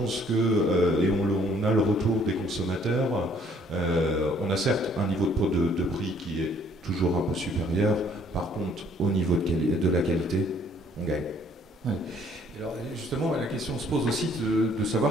que, et on a le retour des consommateurs, on a certes un niveau de prix qui est toujours un peu supérieur, par contre, au niveau de la qualité, on gagne. Ouais. Alors, justement, la question se pose aussi de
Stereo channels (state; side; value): normal; both; correlation 0.61